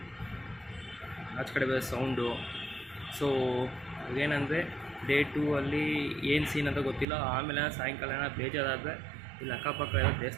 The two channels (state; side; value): drops out; left; at 7.1 s